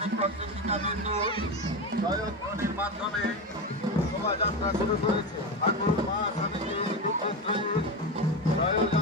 শিক্ষিকাবৃন্দ জয়ধ্বনির মাধ্যমে শোভাযাত্রা শুরু করেছে। ঠাকুর মা স্বামীজি দুঃখত্রয়ীর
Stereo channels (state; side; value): normal; both; correlation 0.18